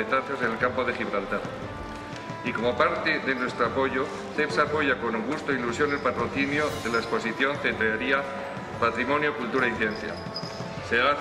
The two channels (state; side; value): identical; both; correlation 1.00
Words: en el campo de Gibraltar. Y como parte de nuestro apoyo, CEPSA apoya con gusto e ilusión el patrocinio de la exposición Cetrería, Patrimonio, Cultura y Ciencia. Se da la